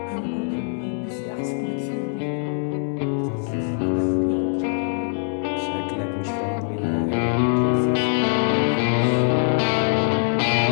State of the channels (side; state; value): right; silent; digital silence